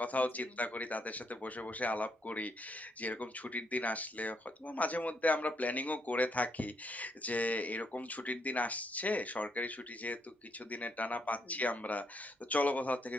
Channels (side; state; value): both; normal; correlation 0.75